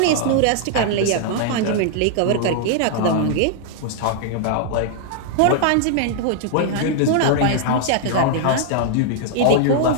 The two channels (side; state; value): both; different; correlation -0.01